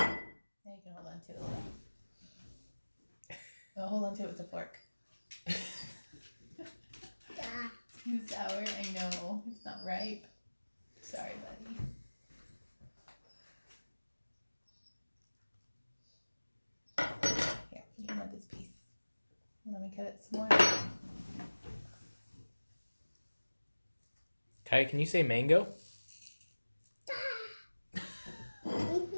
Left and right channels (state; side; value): inverted; both; correlation -1.00